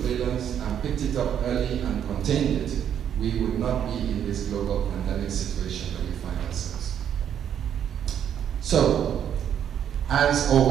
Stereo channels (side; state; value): left; quieter; 9.3 dB